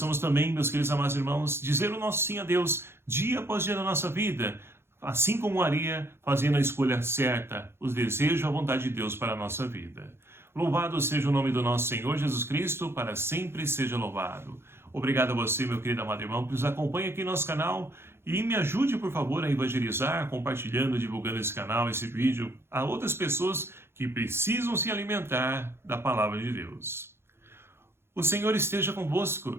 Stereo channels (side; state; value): left; late; 0.12 ms